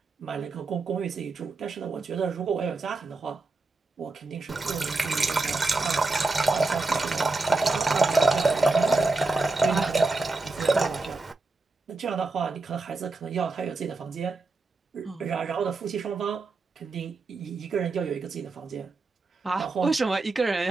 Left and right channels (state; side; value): quieter; left; 3.5 dB